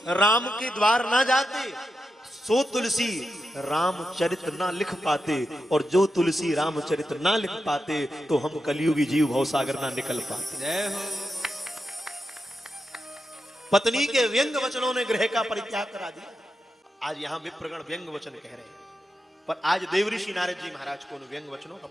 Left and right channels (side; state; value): both; normal; correlation 0.88